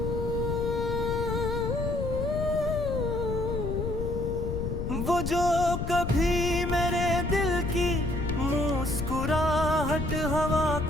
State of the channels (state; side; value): noise; left; rumble, 3 dB below the sound